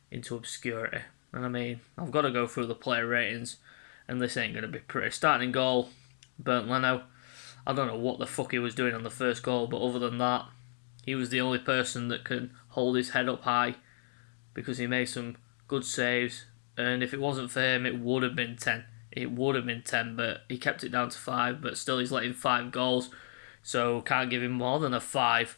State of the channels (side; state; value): right; silent; digital silence